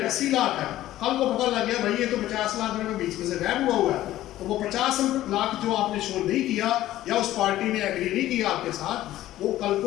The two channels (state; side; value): quieter; right; 14.4 dB